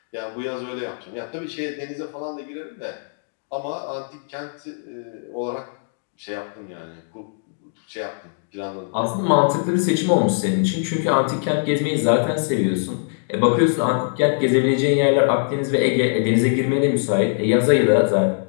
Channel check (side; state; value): right; silent; digital silence